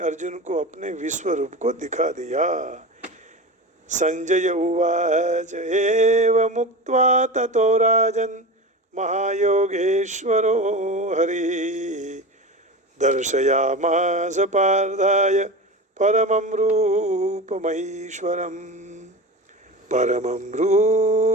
को अपने विश्व रूप को दिखा दिया। संजय उवाच एव मुक्त्वा ततो राजन् महायोगेश्वरो हरि दर्शयामास पार्थाय परमं रूपमैश्वरम् परमं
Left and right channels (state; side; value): normal; both; correlation 0.27